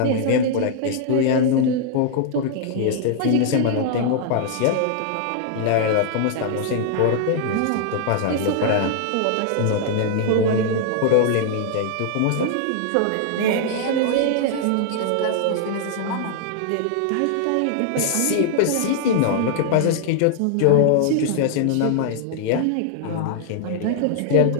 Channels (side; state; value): both; different; correlation -0.01